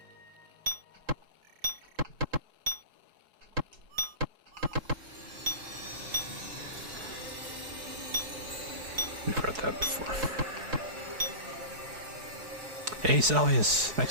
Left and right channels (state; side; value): late; left; 4.7 ms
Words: We've read that before. Hey Salius,